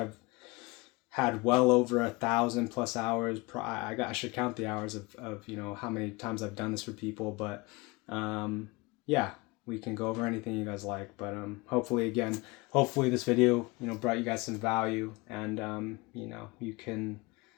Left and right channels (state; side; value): quieter; right; 24.5 dB